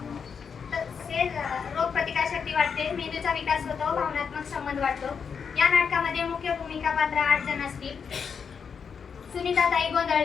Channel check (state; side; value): quieter; right; 6.4 dB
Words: तसेच रोगप्रतिकारशक्ती वाढते, मेंदूचा विकास होतो, भावनात्मक संबंध वाढतो. या नाटकामध्ये मुख्य भूमिका पात्र 8 जण असतील. सुनीताताई